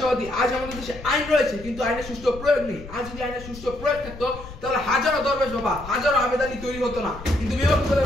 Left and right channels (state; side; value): noise; left; rumble, 14 dB below the sound